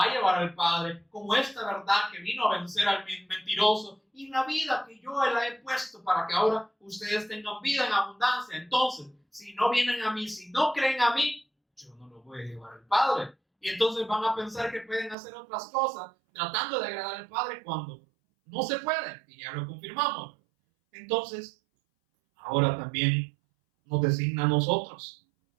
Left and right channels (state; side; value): drops out; left; at 15.2 s